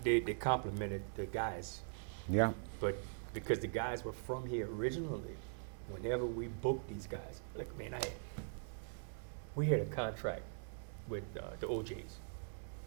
they complimented the guys, Yeah. but because the guys were from here originally, whenever we booked these guys, look, man, we had a contract with the OJs,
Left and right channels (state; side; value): silent; left; digital silence